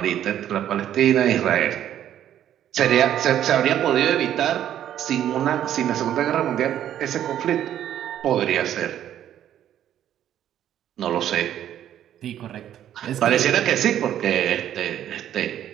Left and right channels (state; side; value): quieter; left; 10.9 dB